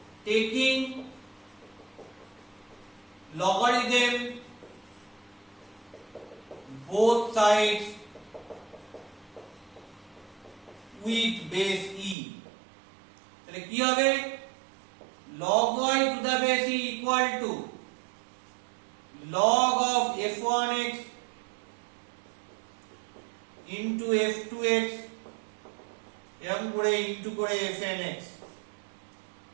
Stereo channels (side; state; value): left; drops out; at 12.2 s